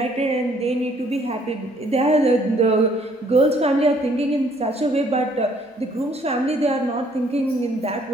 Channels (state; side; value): normal; both; correlation 0.63